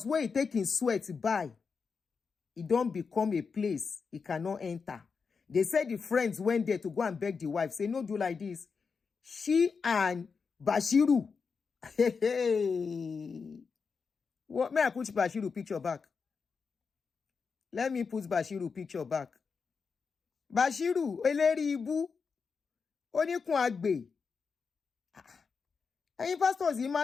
where he taking sweat buy, it don't become a place he cannot enter. They said the friends went there to go and beg the wife. Say, no, do like this. She and Bashiru. What? May I put Bashiru picture back? Let me put Bashiru picture back. Bashiru, eleri ibu. Onikun agbe. Any pastors, he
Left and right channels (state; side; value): quieter; right; 5.3 dB